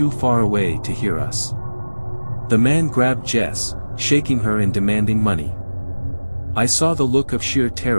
far away to hear us. The man grabbed Jess, shaking her and demanding money. I saw the look of sheer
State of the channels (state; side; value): inverted; both; correlation -1.00